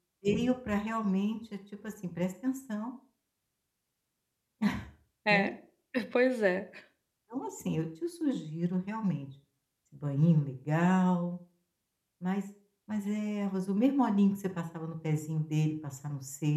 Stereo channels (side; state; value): both; identical; correlation 1.00